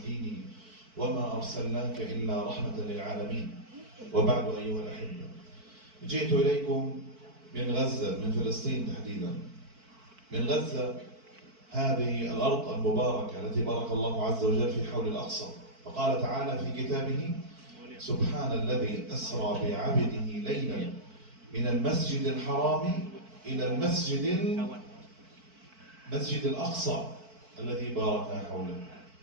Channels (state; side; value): late; left; 4.5 ms